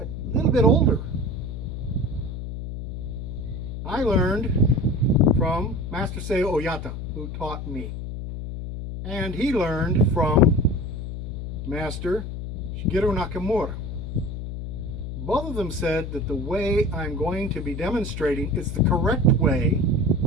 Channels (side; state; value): left; noise; hum, 7 dB below the sound